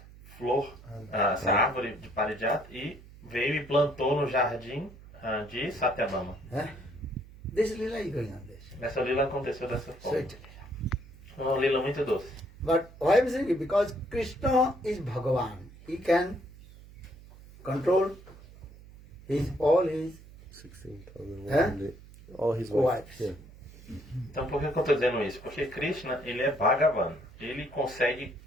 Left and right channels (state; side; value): noise; right; hum, 20 dB below the sound